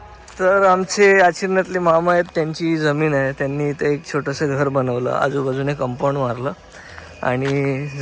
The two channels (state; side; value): identical; both; correlation 1.00